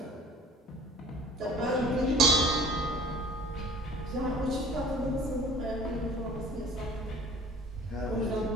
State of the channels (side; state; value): both; normal; correlation 0.49